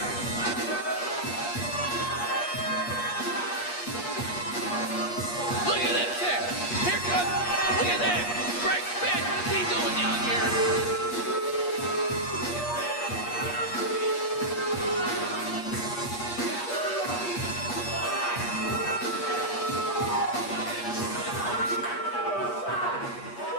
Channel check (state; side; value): late; right; 8.4 ms